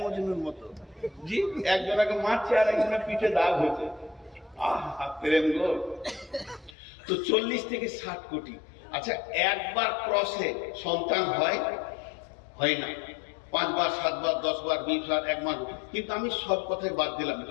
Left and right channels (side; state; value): right; drops out; at 6.8 s